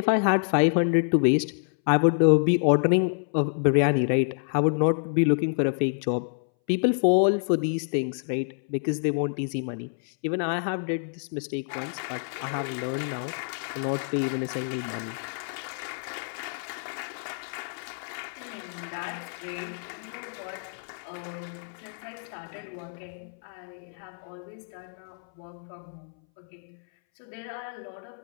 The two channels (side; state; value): right; silent; 60 dB below the other